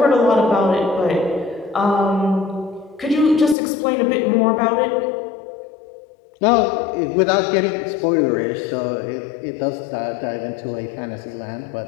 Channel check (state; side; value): drops out; right; at 3.6 s